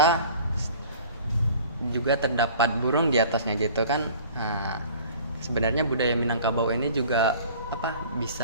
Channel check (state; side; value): inverted; both; correlation -0.47